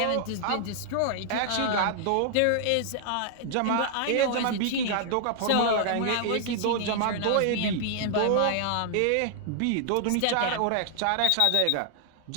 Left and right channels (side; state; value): both; different; correlation 0.00